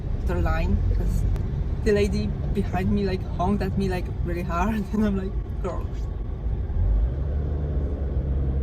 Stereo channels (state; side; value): identical; both; correlation 1.00